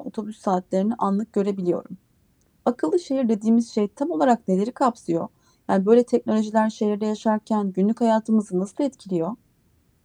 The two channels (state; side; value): identical; both; correlation 1.00